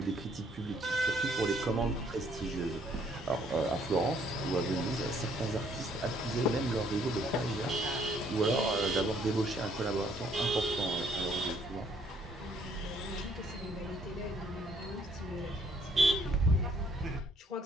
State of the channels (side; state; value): both; normal; correlation 0.65